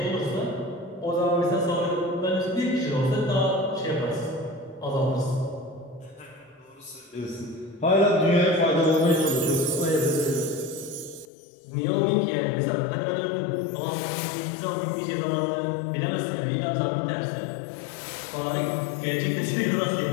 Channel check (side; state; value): right; drops out; at 11.2 s